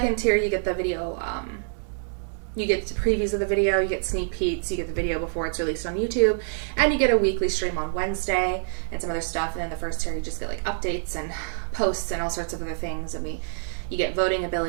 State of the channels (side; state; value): left; silent; 61 dB below the other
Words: tier, you get the video, you get previews of the video, you get sneak peeks, you get the video before it's released on YouTube, and you get a weekly stream on Wednesday and some other stuff. And then the first tier, you just get like updates and posts and all sorts of other things, and you get voting